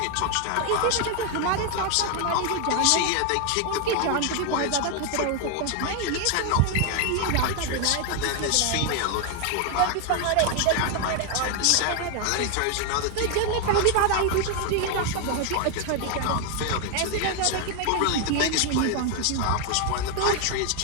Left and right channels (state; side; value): different; both; correlation 0.01